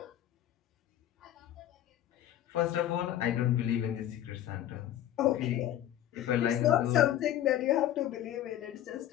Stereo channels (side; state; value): right; quieter; 12.0 dB